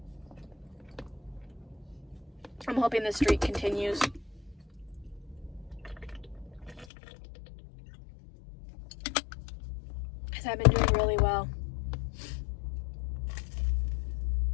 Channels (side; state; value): right; drops out; at 6.9 s